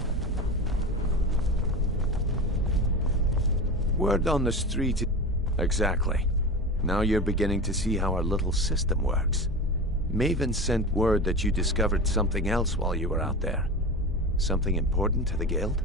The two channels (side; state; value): both; normal; correlation 0.27